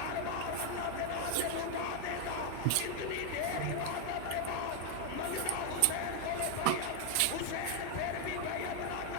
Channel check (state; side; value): different; both; correlation 0.01